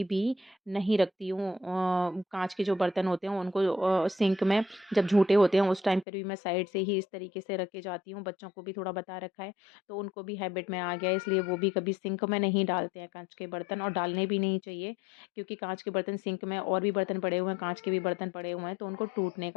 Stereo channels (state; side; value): drops out; right; at 6.1 s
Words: भी नहीं रखती हूँ। काँच के जो बर्तन होते हैं उनको सिंक में जब झूठे होते हैं उस टाइम पर भी मैं साइड से ही इस तरीके से रख के जाती हूँ। बच्चों को भी थोड़ा बता रखा है तो उनको भी हैबिट में आ गया है इसलिए वो भी कभी सिंक में नहीं डालते हैं काँच के बर्तन और डालने भी नहीं चाहिए। क्योंकि काँच के बर्तन सिंक में और भी बर्तन पड़े हुए हैं, काँच के भी बर्तन पड़े हुए हैं, तो उनको टूटने